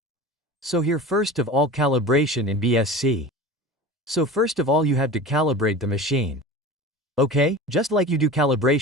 So here first of all calibration in BSC. So first of all you have to calibrate the machine. Okay, just like you do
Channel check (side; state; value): both; normal; correlation 0.34